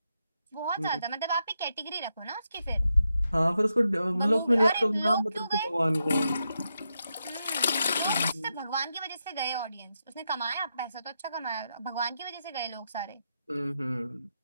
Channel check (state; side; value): inverted; both; correlation -0.84